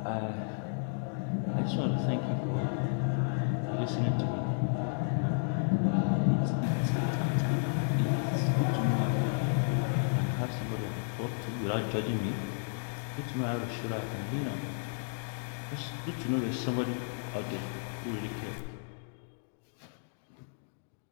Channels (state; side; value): silent; right; digital silence